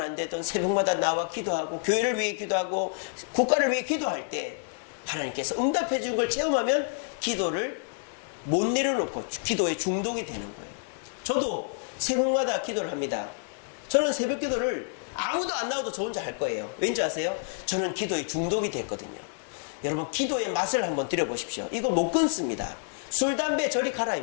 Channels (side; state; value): right; silent; 59 dB below the other